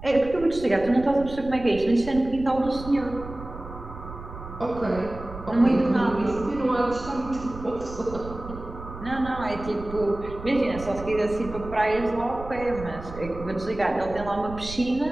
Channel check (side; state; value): right; noise; rumble, 13 dB below the sound